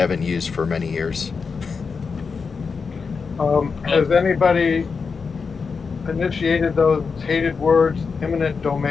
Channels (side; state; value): right; quieter; 5.2 dB